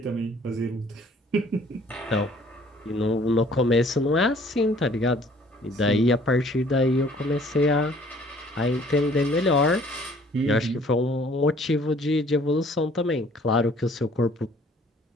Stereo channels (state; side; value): normal; both; correlation 0.57